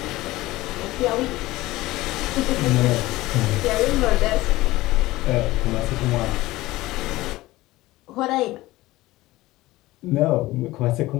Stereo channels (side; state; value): right; quieter; 18.2 dB